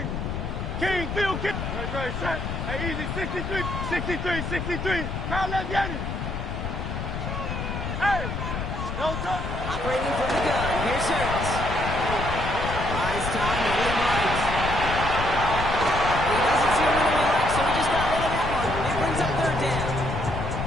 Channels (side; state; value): left; noise; rumble, 4 dB below the sound